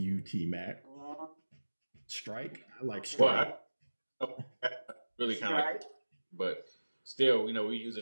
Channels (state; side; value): inverted; both; correlation -1.00